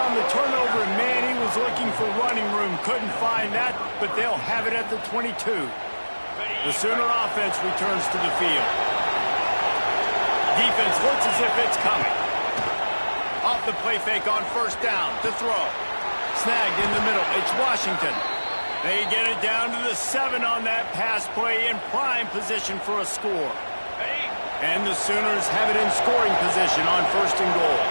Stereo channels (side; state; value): both; inverted; correlation -1.00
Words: the turnover, and man, he was looking for running room. Couldn't find that, but they'll have it at the 22. The Sooner offense returns to the field. Defense looks as if it's coming. Off the play fake on first down to throw. Snagged in the middle. It's Washington. They get it down to the 7 on that pass play in prime position for a score. And the Sooners have it in scoring position on 1st and goal.